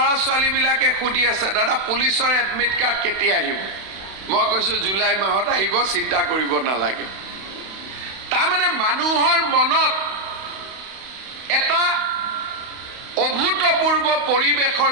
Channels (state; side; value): late; left; 32 ms